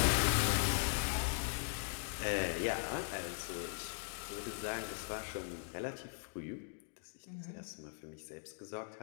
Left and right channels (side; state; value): right; silent; digital silence